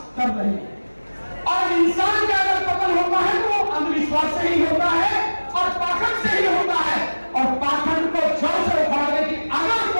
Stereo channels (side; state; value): both; inverted; correlation -1.00